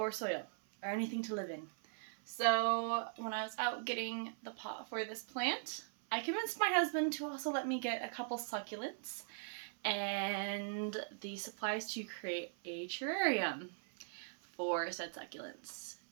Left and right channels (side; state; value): left; silent; 51 dB below the other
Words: soil or anything to live in. So when I was out getting the pot for this plant, I convinced my husband to also let me get a couple succulents and the supplies to create a terrarium for said succulents.